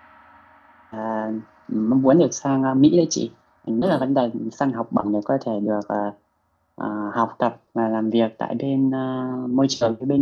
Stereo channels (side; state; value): both; identical; correlation 1.00